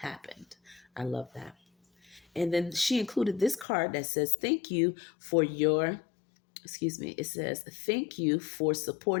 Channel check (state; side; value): drops out; right; at 3.7 s